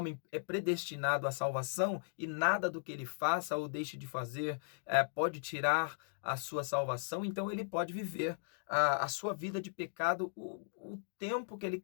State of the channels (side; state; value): right; silent; digital silence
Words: é predestinado à salvação e nada do que ele faça ou deixe de fazer pode tirar a sua salvação, então ele pode viver a sua vida de pecado o tempo que ele